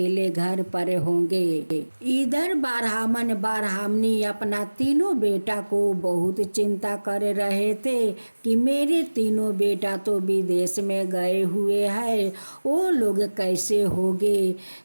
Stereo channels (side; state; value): both; inverted; correlation -1.00